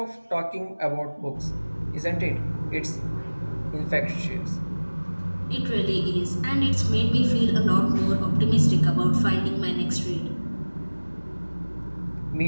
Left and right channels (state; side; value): inverted; both; correlation -1.00